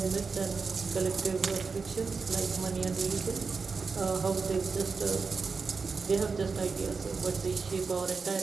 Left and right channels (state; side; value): quieter; left; 4.8 dB